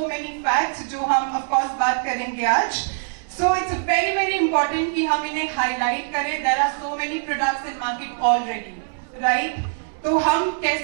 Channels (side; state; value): left; silent; digital silence